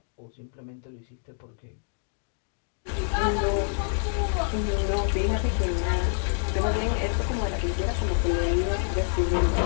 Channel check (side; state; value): right; silent; 60 dB below the other